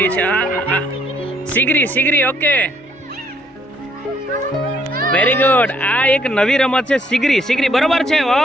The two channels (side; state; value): both; normal; correlation 0.67